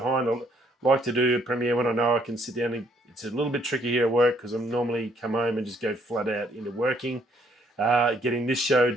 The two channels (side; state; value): both; normal; correlation 0.67